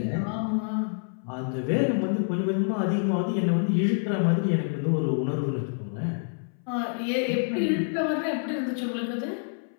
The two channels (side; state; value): right; silent; 60 dB below the other